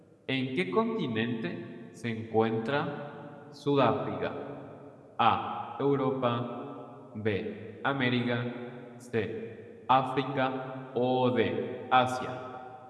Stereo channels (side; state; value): both; identical; correlation 1.00